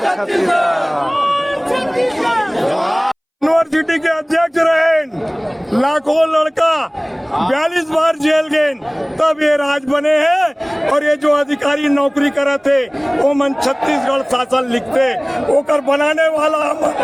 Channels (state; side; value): identical; both; correlation 1.00